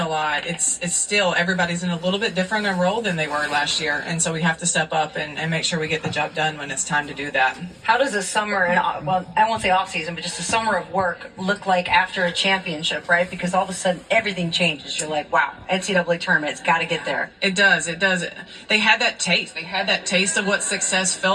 a lot, it's still everybody's in a little bit different a role than they were last year. And so we have to step up and make sure we get the job done when it's time to do that. How does a summer, and well, I won't say off season, but just a summer of work look like after a championship, right? Because all of a sudden everything changes. You're like, wow, NCAA tournament, it's got to get there. It does. It does. They had that taste. They had that taste of what success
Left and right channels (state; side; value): identical; both; correlation 1.00